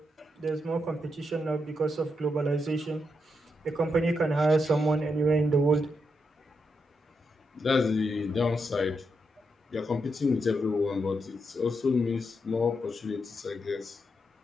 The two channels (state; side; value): normal; both; correlation 0.83